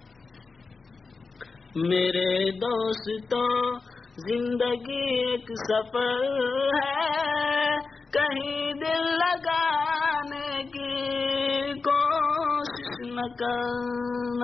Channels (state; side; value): quieter; right; 4.3 dB